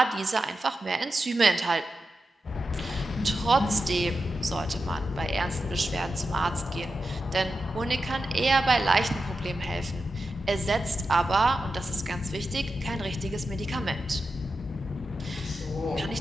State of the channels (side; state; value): both; normal; correlation 0.90